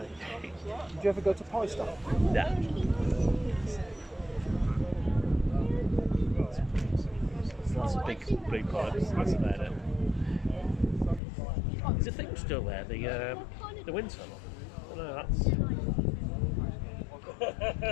Did you ever go to Pie Stop? Yeah. That's a big blue pipe. That's about it. Is the thing still there? The wind tunnel? No, that's.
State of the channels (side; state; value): right; drops out; at 11.2 s